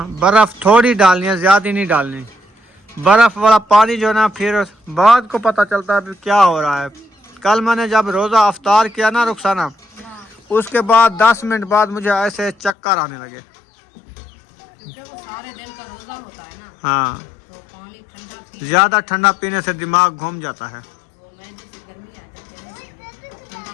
बर्फ़ थोड़ी डालनी है, ज़्यादा नहीं डालनी। बर्फ़ वाला पानी जो है ना, फिर बाद को पता चलता है क्या हो रहा है। कल मैंने जब रोज़ा अफ्तार किया ना रुखसाना, उसके बाद 10 मिनट बाद मुझे ऐसे चक्कर आने लगे, क्योंकि वो सारे दिन का रोजा होता है ना। हाँ, तो पानी ठंडा पी, ज़्यादा ठंडा पीने से दिमाग घूम जाता है। वो मैदे से गर्मी आ जाती है ना, इसलिए ठंडा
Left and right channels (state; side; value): drops out; right; at 12.8 s